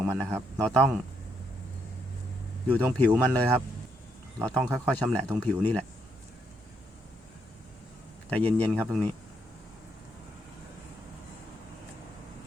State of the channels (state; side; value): normal; both; correlation 0.76